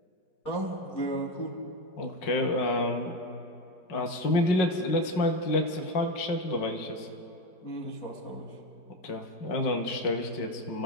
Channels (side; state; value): right; late; 5.4 ms